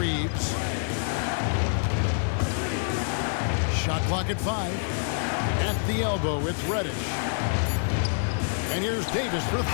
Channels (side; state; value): right; silent; digital silence